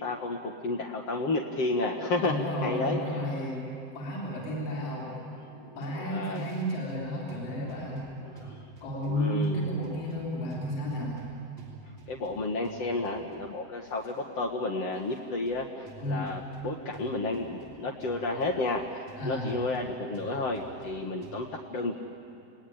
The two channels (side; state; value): right; late; 7.8 ms